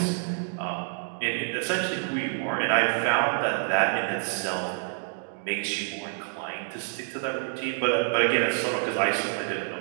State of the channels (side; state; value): left; silent; 60 dB below the other